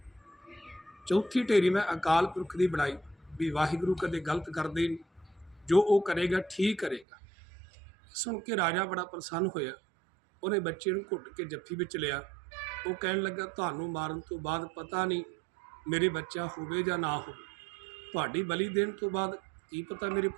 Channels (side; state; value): left; drops out; at 7.1 s